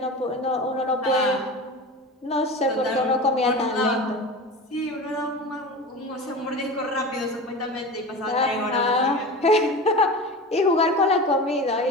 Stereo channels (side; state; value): both; normal; correlation 0.31